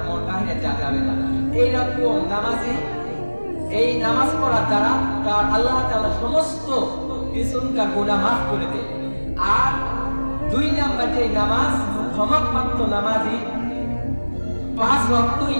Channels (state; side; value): inverted; both; correlation -1.00